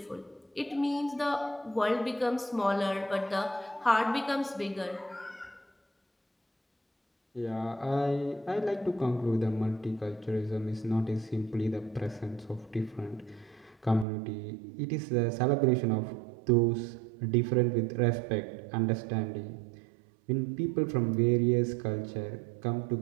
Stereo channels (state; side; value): drops out; left; at 14.1 s